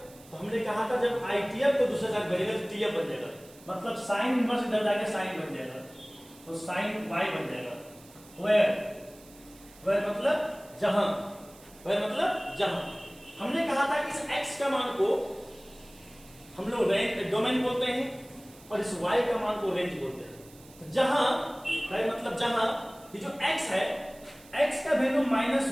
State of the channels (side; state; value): right; noise; hiss, 23 dB below the sound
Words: तो हमने कहा था जब ITF को दूसरे साथ भेजेगा तो TF बन जाएगा, मतलब साइन इनवर्स इधर जाके साइन बन जाएगा तो साइन y बन जाएगा। वेयर मतलब जहां, वेयर मतलब जहां। हमने कहा था कि इस x का मान को हम लोग रेंज डोमेन बोलते हैं और इस y का मान को रेंज बोलते हैं। तो जहां वेयर मतलब जहां ये जो x है, x का वैल्यू